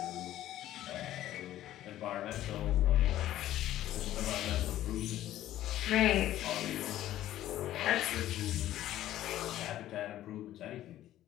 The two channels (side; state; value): right; quieter; 13.4 dB